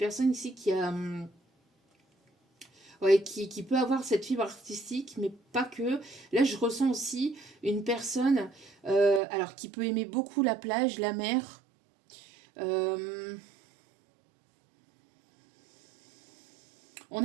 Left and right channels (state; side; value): drops out; left; at 9.2 s